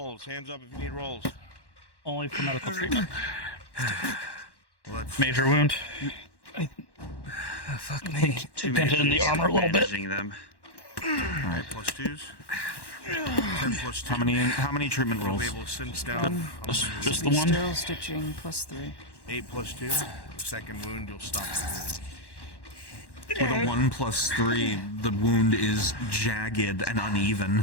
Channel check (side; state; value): right; late; 1.1 ms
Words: Hands up if you need rolls. Only for medical treatment. Well, that's Major wound. Fuck me. Dented in the armor a little bit. Them. Alright, plus 2s. 10 plus 2. How many treatment We'll rolls? be able to cinch down. Just the one. Sterile stitching plus 3. 8 plus 2. The second wound, you'll stop the With a 1 plus 3, the wound is jagged and